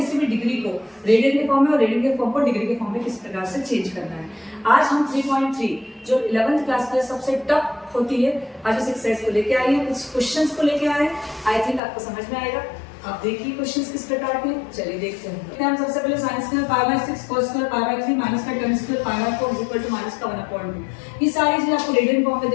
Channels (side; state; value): right; drops out; at 11.8 s